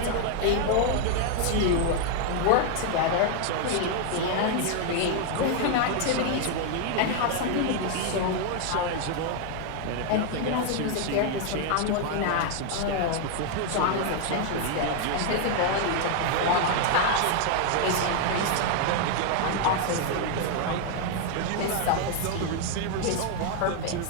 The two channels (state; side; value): different; both; correlation 0.00